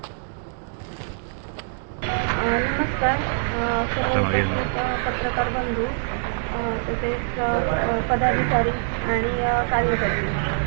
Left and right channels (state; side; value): silent; left; digital silence